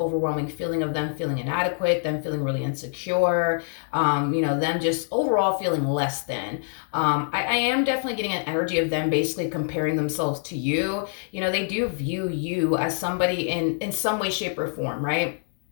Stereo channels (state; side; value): silent; right; digital silence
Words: feeling of them feeling inadequate, them feeling really insecure, them just overall feeling less than. I am definitely getting an energy of them basically comparing themselves to you. They do view you as somebody in some way, shape, or form, right?